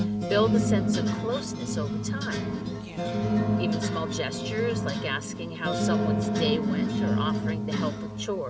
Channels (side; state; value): both; identical; correlation 1.00